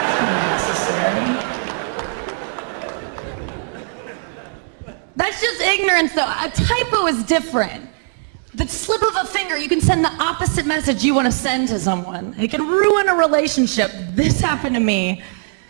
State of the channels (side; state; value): left; silent; digital silence